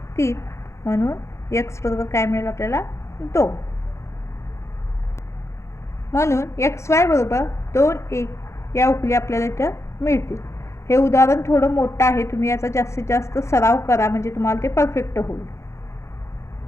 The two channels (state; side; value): late; right; 0.14 ms